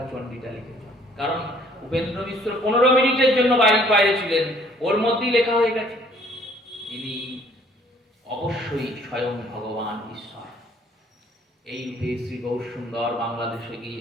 চণ্ডীটা লিখেছেন। কারণ উপেন্দ্র মিশ্র 15 মিনিটের জন্য বাইরে ছিলেন, ওর মধ্যেই লেখা হয়ে গেছে। ইনি অবশ্যই স্বয়ং ভগবান ঈশ্বর। এই রূপে শ্রী গৌরসুন্দর বাংলাদেশে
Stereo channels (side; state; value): both; normal; correlation 0.59